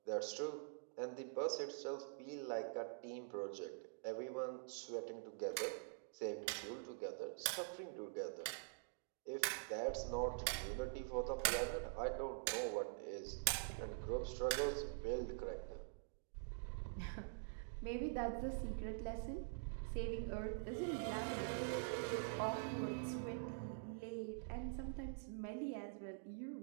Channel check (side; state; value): left; silent; digital silence